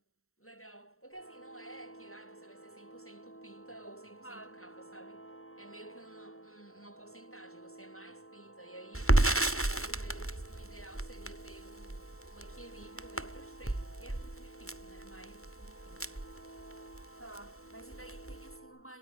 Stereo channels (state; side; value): late; right; 0.63 ms